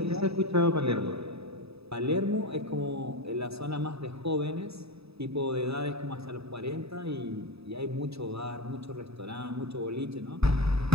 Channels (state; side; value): late; left; 0.78 ms